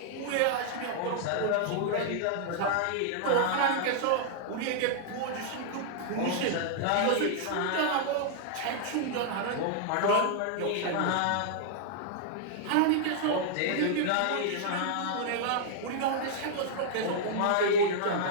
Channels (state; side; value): different; both; correlation -0.01